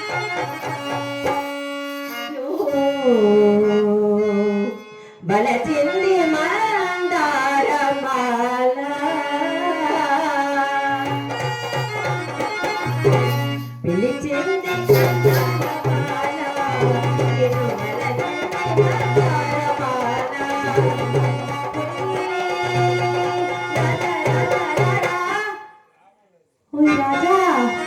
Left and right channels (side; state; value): both; identical; correlation 1.00